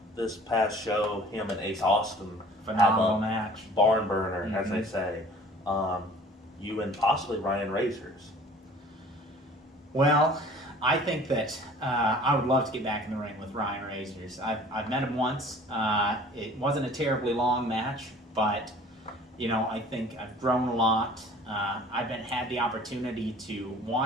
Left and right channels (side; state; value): both; normal; correlation 0.48